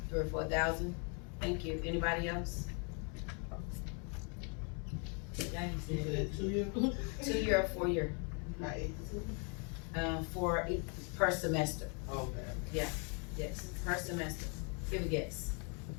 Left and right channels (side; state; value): right; quieter; 37.0 dB